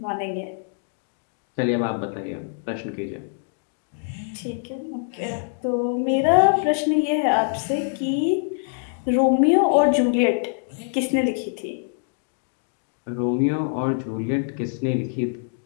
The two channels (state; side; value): silent; right; digital silence